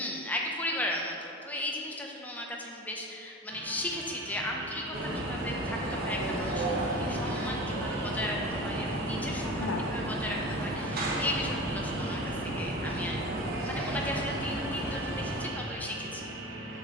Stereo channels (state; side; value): normal; both; correlation 0.32